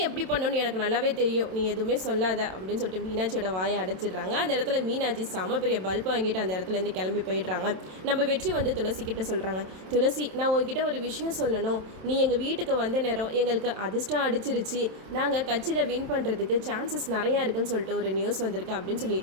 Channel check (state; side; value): late; left; 27 ms